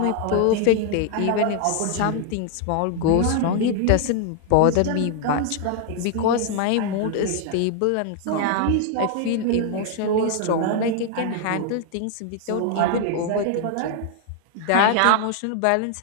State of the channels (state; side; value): different; both; correlation 0.00